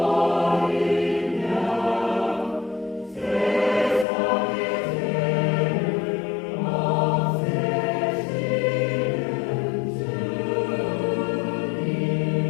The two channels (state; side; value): drops out; right; at 4.0 s